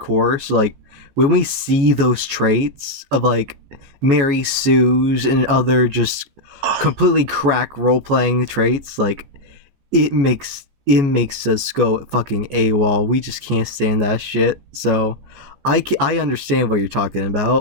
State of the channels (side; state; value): left; late; 14 ms